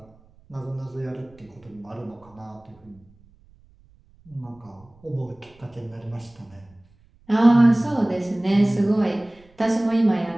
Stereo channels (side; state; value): right; noise; rumble, 29 dB below the sound